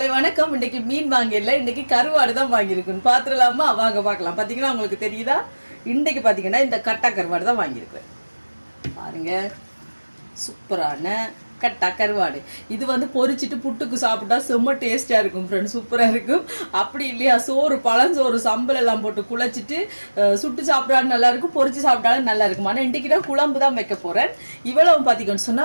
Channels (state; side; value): inverted; both; correlation -1.00